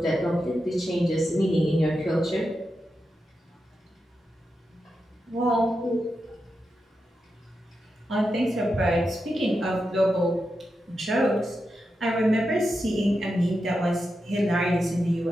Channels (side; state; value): both; normal; correlation 0.88